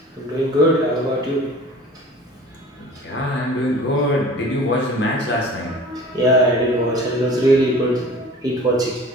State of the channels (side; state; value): both; normal; correlation 0.44